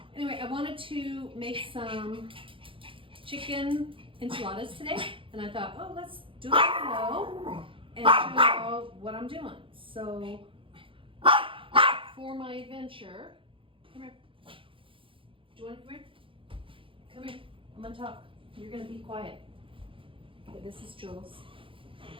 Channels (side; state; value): left; late; 0.25 ms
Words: Anyway, I wanted to make some chicken enchiladas today, and I thought, oh, let's do a video and show you all what I'm doing. So for my venture, come here. Do you want to come here? Come here. I'm gonna talk. You're gonna be quiet. Okay, this is Jules.